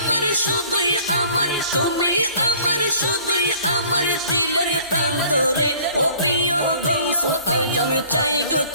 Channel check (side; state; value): both; inverted; correlation -0.52